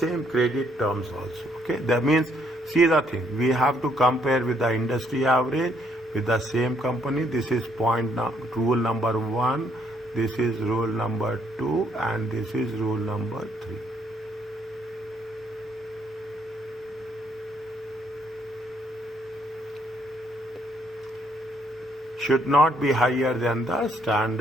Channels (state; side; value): normal; both; correlation 0.70